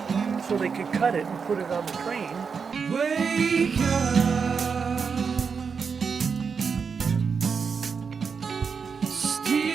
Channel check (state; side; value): quieter; left; 5.8 dB